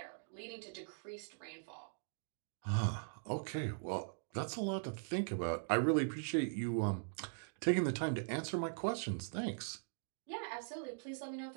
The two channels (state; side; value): silent; left; digital silence